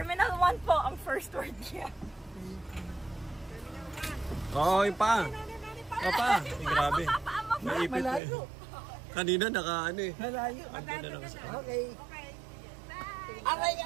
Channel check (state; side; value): drops out; left; at 8.2 s